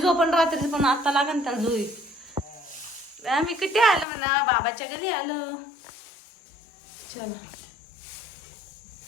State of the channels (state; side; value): drops out; right; at 4.0 s